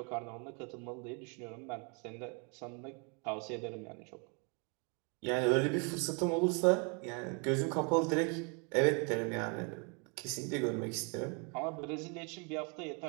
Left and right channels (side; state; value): left; quieter; 34.8 dB